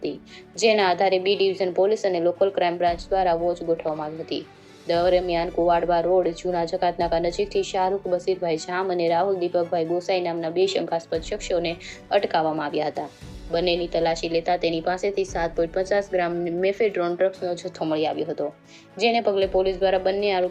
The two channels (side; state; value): both; identical; correlation 1.00